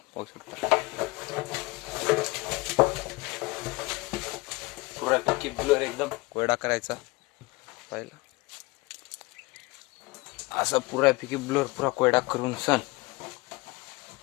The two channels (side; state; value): right; quieter; 24.0 dB